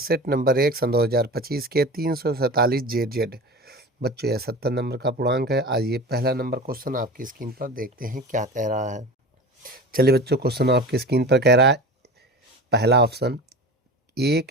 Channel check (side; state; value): both; normal; correlation 0.33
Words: नंबर 1 सन 2025 के 347 जेड। बच्चों, यह 70 नंबर का पूर्णांक है। आज ये पहला नंबर क्वेश्चन आपकी स्क्रीन पर देखते हैं क्या कह रहा है। चलिए बच्चों, क्वेश्चन आपकी स्क्रीन पर कह रहा है, पहला ऑप्शन,